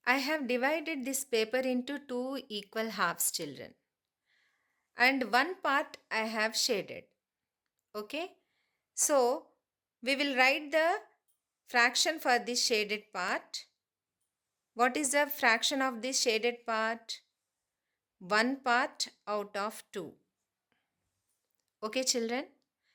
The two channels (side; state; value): both; identical; correlation 1.00